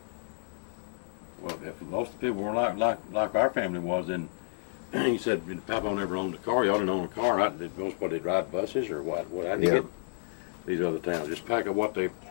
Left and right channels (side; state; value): right; silent; digital silence